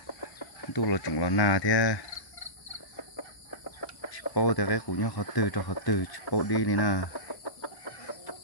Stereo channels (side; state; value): right; late; 1.0 ms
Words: tôi là chúng là nào thế bao thì cái của nhau họ từ cho họ từ bao đi này nè